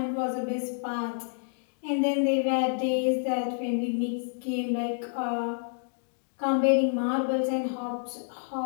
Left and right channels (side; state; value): right; silent; digital silence